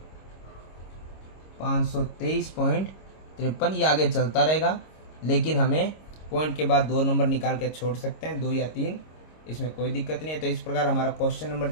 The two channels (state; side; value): late; right; 26 ms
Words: 523.53। ये आगे चलता रहेगा, लेकिन हमें पॉइंट के बाद 2 नंबर निकाल के छोड़ सकते हैं, 2 या 3, इसमें कोई दिक्कत नहीं है। तो इस प्रकार हमारा क्वेश्चन नंबर